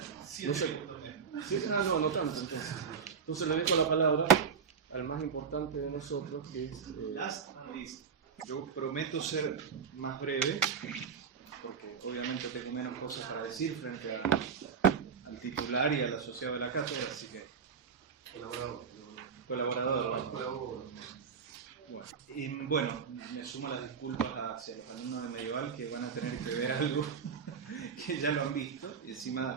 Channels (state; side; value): quieter; left; 6.3 dB